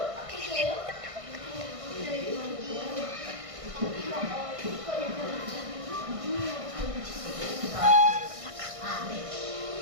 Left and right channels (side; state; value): left; late; 1.6 ms